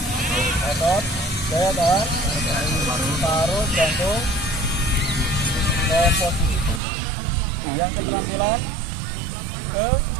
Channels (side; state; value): left; drops out; at 6.8 s